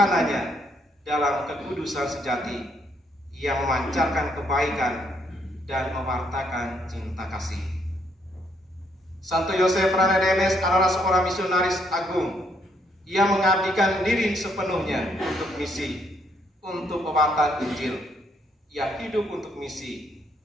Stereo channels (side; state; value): both; normal; correlation 0.71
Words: dalam kekudusan sejati yang memancarkan kebaikan dan mewartakan cinta kasih. Santo Yosef Ranedemes adalah seorang misionaris agung. Ia mengabdikan diri sepenuhnya untuk misi, untuk pewartaan Injil. Ia hidup untuk misi.